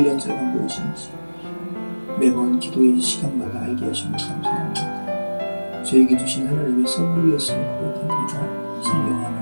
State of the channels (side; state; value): both; inverted; correlation -1.00